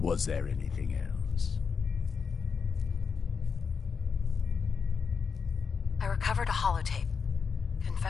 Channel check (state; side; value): quieter; right; 5.8 dB